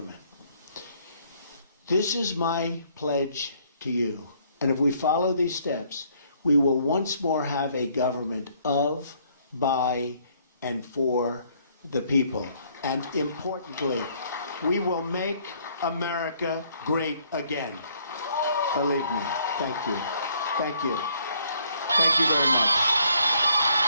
This is my pledge to you. And if we follow these steps, we will once more have a government of, by, and for the people. And importantly, we will make America great again. Believe me. Thank you. Thank you. Thank you very much.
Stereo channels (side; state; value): both; inverted; correlation -0.65